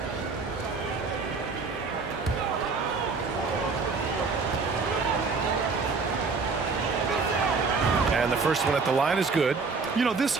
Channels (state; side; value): quieter; left; 4.5 dB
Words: And the first one at the line is good. You know, this